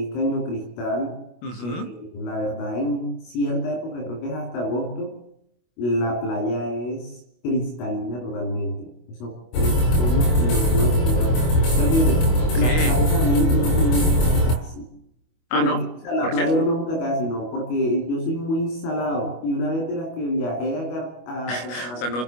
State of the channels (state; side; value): late; right; 25 ms